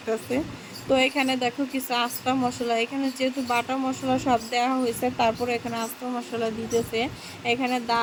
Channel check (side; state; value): both; identical; correlation 1.00